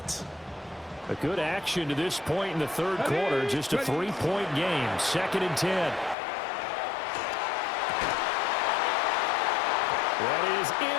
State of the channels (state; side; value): drops out; right; at 6.2 s